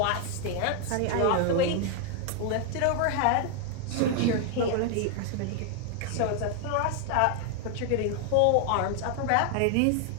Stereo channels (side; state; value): both; different; correlation 0.00